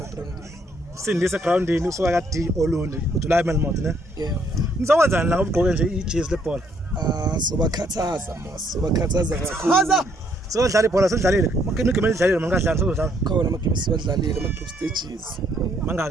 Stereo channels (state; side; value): normal; both; correlation 0.69